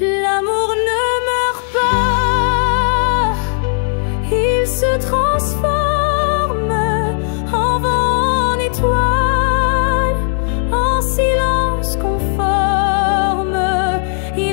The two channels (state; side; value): silent; right; digital silence